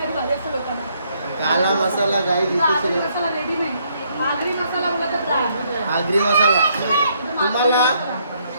भारी असतं लोकांना. काला मसाला गाई आगरी इथे मसाला रेडी नाही. आगरी मसाला बोलत राहा. आगरी मसाला तुम्हाला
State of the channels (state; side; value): inverted; both; correlation -0.71